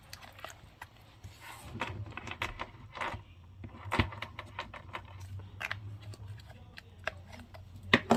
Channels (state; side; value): identical; both; correlation 1.00